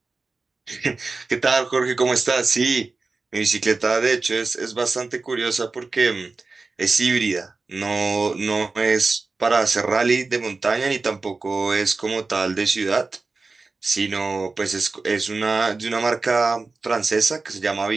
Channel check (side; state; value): left; quieter; 3.8 dB